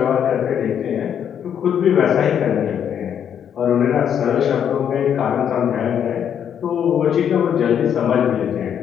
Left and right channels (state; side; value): quieter; right; 8.7 dB